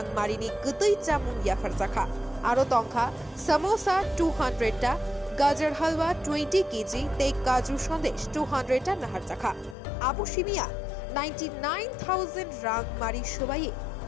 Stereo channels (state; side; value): drops out; right; at 9.8 s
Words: মারিনি গতই চামুং ইয়াফার জাখা আরো তংখা সামোসা 200 টা গাজর halwa 20 KG তেই কাজু সন্দেশ 200 টা নাহার জাখা আবু সিমিয়া 99,000 রাং মারি সবাইয়ে